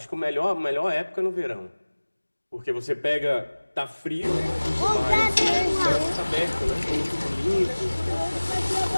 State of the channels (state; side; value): inverted; both; correlation -1.00